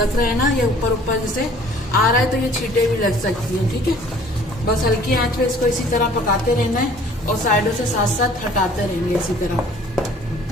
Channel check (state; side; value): normal; both; correlation 0.53